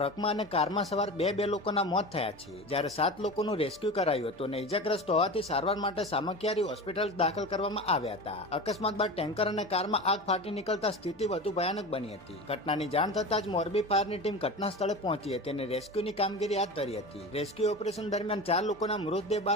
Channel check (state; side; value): normal; both; correlation 0.30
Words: અને કારમાં સવાર 2 લોકોના મોત થયા છે. જ્યારે 7 લોકોનું રેસ્ક્યુ કરાયું હતું અને ઇજાગ્રસ્ત હોવાથી સારવાર માટે સામખિયારી હોસ્પિટલ દાખલ કરવામાં આવ્યા હતા. અકસ્માત બાદ ટેન્કર અને કારમાં આગ ફાટી નીકળતા સ્થિતિ વધુ ભયાનક બની હતી. ઘટનાની જાણ થતાં જ મોરબી ફાયરની ટીમ ઘટના સ્થળે પહોંચી હતી અને રેસ્ક્યુની કામગીરી હાથ ધરી હતી. રેસ્ક્યુ ઓપરેશન દરમિયાન 4 લોકોના મૃતદેહ